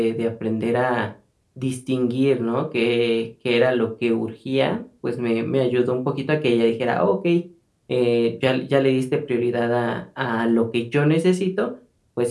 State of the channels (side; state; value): both; identical; correlation 1.00